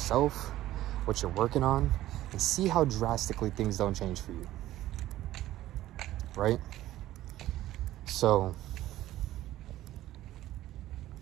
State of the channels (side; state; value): left; quieter; 14.6 dB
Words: what you're working on, and see how drastically things don't change for you. Right? So,